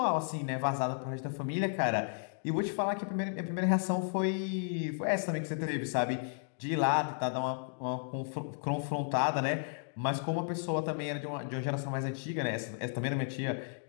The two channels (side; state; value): right; silent; digital silence